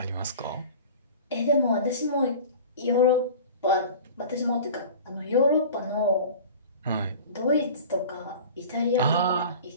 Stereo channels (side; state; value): both; inverted; correlation -0.39